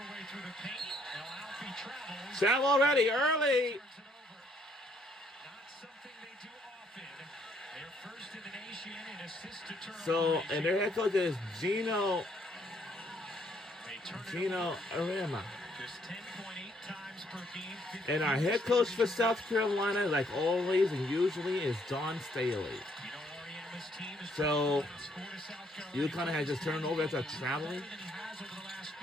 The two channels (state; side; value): normal; both; correlation 0.68